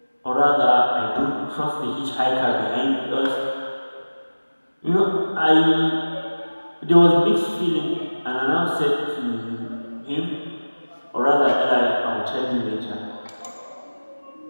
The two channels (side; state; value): both; inverted; correlation -1.00